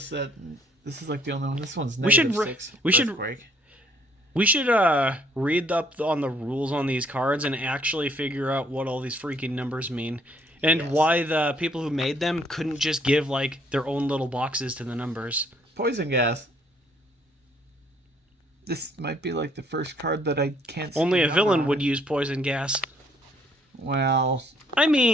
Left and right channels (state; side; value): normal; both; correlation 0.65